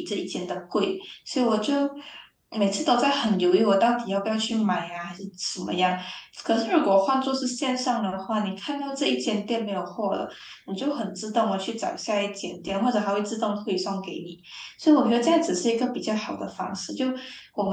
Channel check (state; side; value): identical; both; correlation 1.00